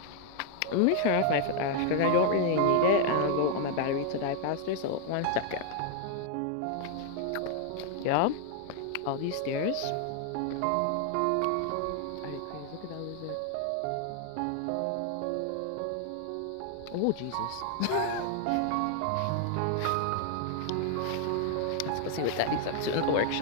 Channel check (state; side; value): different; both; correlation 0.00